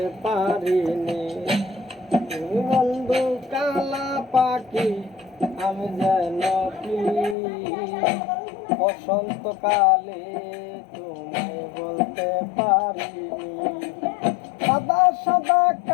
পারিনি। তুমি বন্ধু কালা পাখি, আমি যেন কি বসন্তকালে তোমায় বলতে পারিনি। সাদা সাদা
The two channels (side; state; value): right; drops out; at 7.4 s